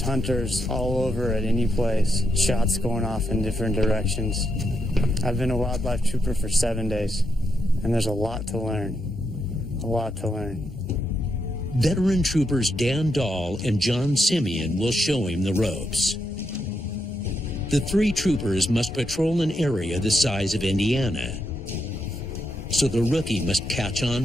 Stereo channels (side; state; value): both; normal; correlation 0.82